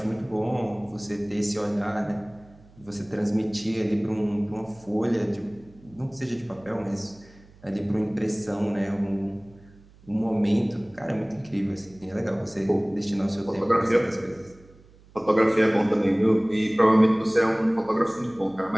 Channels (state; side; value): noise; right; hum, 26 dB below the sound